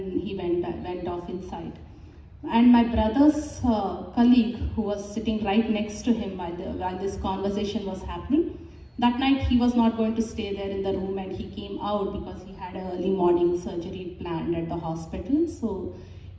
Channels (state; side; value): identical; both; correlation 1.00